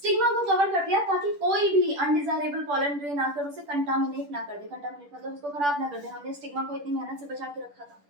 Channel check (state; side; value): late; left; 10 ms